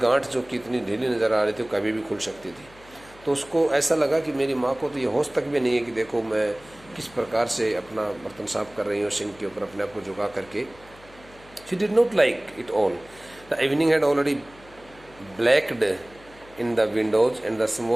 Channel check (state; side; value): noise; left; hum, 24 dB below the sound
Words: जो कितनी ढीली नज़र आ रही थी, कभी भी खुल सकती थी. तो उसको ऐसा लगा कि मेरी माँ को तो ये होश तक भी नहीं है कि देखो मैं किस प्रकार से अपना बर्तन साफ कर रही हो सिंक के ऊपर अपने आप को झुका करके. She did not like it all. The evening had already blacked in the windows and the